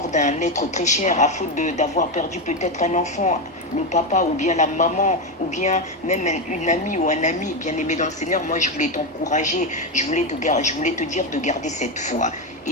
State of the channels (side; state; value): both; normal; correlation 0.11